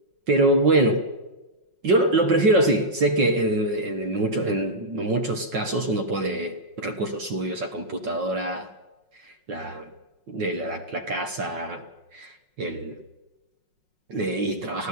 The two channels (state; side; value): late; left; 5.5 ms